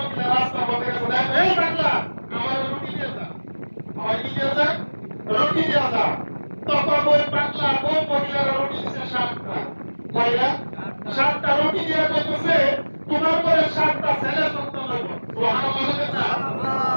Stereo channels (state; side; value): inverted; both; correlation -1.00